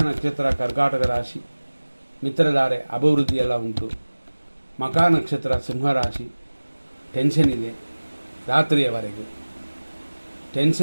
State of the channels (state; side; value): inverted; both; correlation -1.00